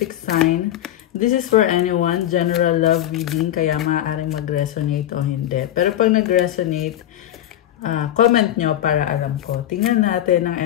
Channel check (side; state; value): right; quieter; 12.3 dB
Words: sign. This is for anyone, general love reading, kaya maaaring mag-resonate o hindi. Pero pag nag-resonate, comment nyo para alam ko. Tingnan natin ang